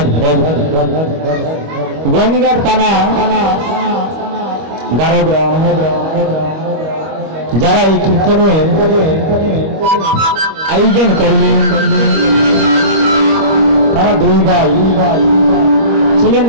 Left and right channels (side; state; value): left; late; 25 ms